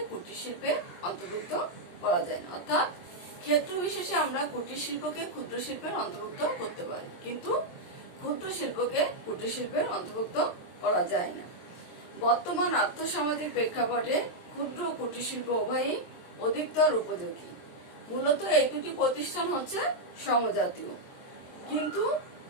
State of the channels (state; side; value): late; right; 23 ms